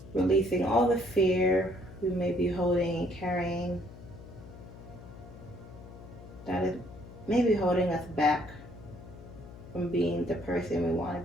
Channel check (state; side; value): noise; left; hum, 16 dB below the sound